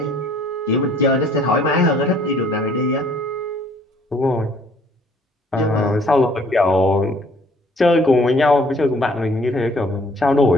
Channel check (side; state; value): both; normal; correlation 0.59